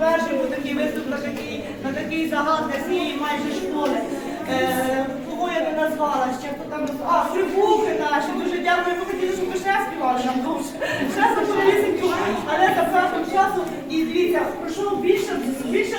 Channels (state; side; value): identical; both; correlation 1.00